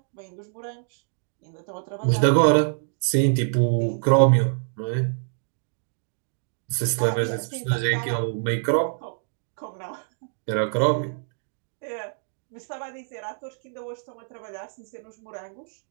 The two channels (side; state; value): left; silent; digital silence